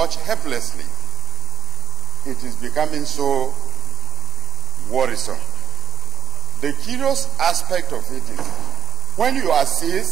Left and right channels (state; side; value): quieter; left; 7.6 dB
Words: helplessly. It is becoming so worrisome. The curious aspect of it is when you are